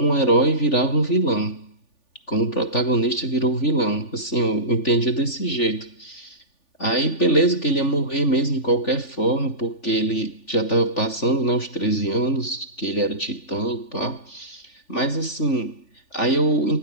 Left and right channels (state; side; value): late; right; 3.4 ms